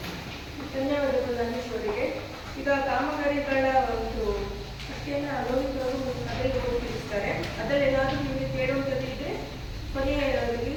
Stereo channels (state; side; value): identical; both; correlation 1.00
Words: ಧನ್ಯವಾದಗಳು ಧನೇಶ್ವರಿಗೆ. ಈಗ ಕಾಮಗಾರಿಗಳ ಒಂದು ಅಷ್ಟೇನ ಅನುಭವಿಸಲು ಸಭೆಗೆ ಹೋಗಿರ್ತಾರೆ, ಅದರಲ್ಲಿ ಏನಾದರೂ ನಿಮಗೆ ಕೇಳುವಂಥದ್ದು ಇದ್ರೆ ಕೊನೆಯ